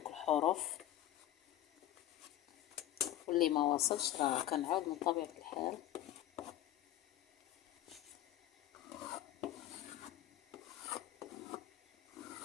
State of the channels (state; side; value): quieter; right; 13.4 dB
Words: الحروف، واللي ما وصلش راه كنعاود من طبيعه الحال.